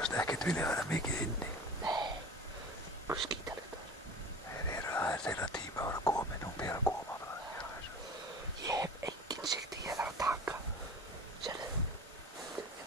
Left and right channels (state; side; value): normal; both; correlation 0.38